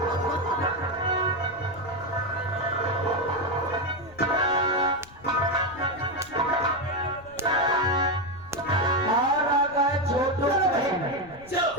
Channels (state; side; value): noise; left; rumble, 22 dB below the sound